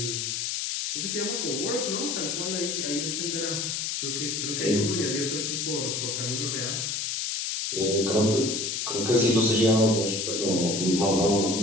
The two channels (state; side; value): noise; left; hiss, 1 dB below the sound